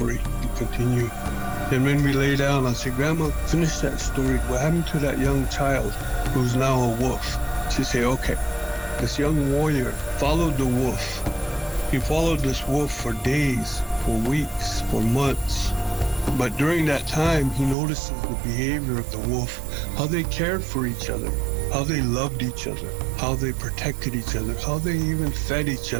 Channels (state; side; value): drops out; left; at 17.8 s